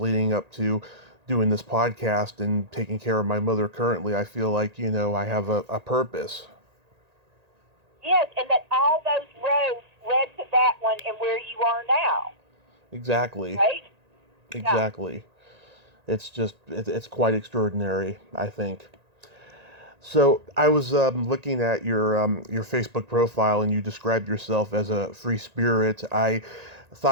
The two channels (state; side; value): late; left; 1.9 ms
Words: up to doing this podcast and taking care of my mother currently, I feel like, I have a purpose. Yes, and that all those roads led to that one and where you are now. Exactly. Right? Exactly. Yeah. It's just, it's quite extraordinary, I think. So I was looking at your Facebook profile, and you described yourself as a free spirit. I